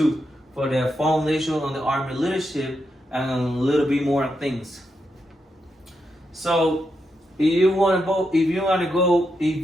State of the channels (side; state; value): both; normal; correlation 0.84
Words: for the foundation on the Army leadership and a little bit more things. So if you want to